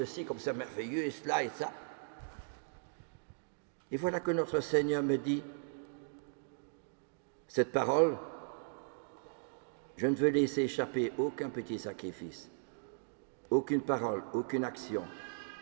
comme c'est merveilleux, et cela et ça. Et voilà que notre Seigneur me dit, cette parole, je ne veux laisser échapper aucun petit sacrifice, aucune parole, aucune action.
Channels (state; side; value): silent; left; digital silence